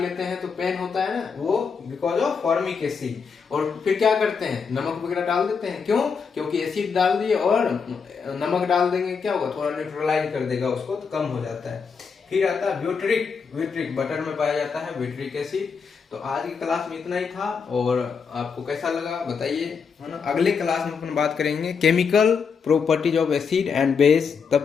हैं तो पेन होता है ना, वो बिकॉज ऑफ फॉर्मिक एसिड। और फिर क्या करते हैं, नमक वगैरह डाल देते हैं। क्यों, क्योंकि एसिड डाल दिए और नमक डाल देंगे, क्या होगा, थोड़ा न्यूट्रलाइज कर देगा उसको, तो कम हो जाता है। फिर आता है ब्यूटरिक, बटर में पाया जाता है ब्यूटरिक एसिड। तो आज की क्लास में इतना ही था, और आपको कैसा लगा बताइए, है ना। अगले क्लास में अपन बात करेंगे chemical properties of acid and base.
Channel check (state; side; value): quieter; right; 5.8 dB